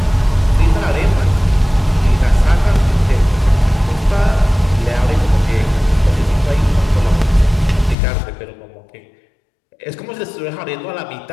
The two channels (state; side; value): drops out; right; at 8.0 s